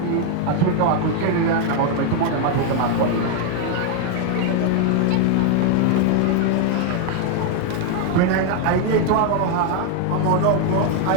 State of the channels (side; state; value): both; different; correlation 0.00